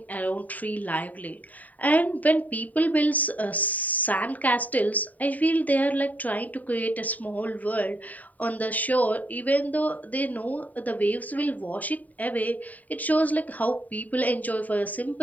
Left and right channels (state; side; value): late; right; 0.075 ms